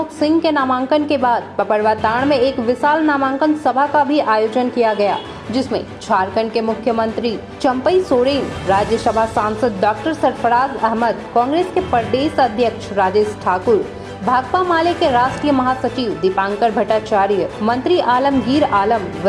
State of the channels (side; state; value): both; identical; correlation 1.00